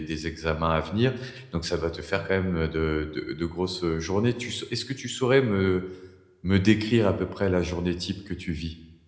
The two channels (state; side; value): identical; both; correlation 1.00